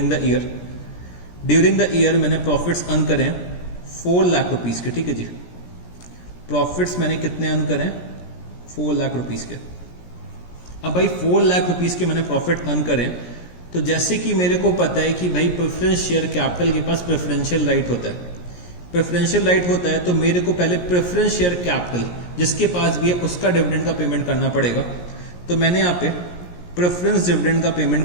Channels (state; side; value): late; right; 17 ms